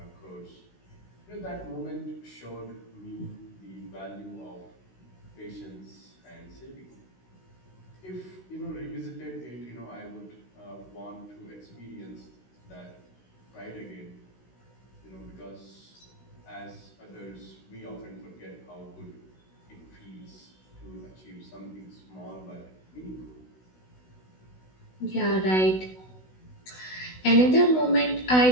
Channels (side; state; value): right; late; 16 ms